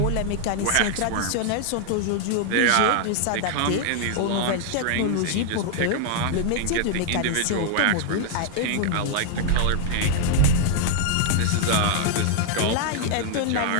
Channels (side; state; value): both; different; correlation 0.00